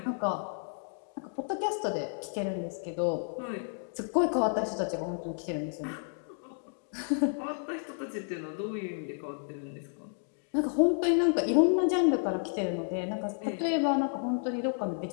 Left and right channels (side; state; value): right; silent; digital silence